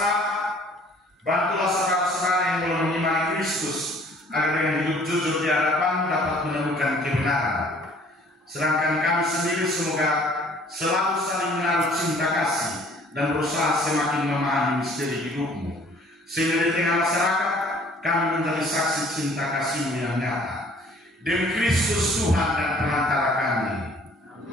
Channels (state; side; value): normal; both; correlation 0.55